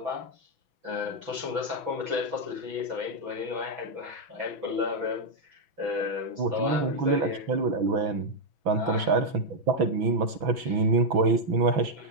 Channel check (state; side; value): late; left; 6.0 ms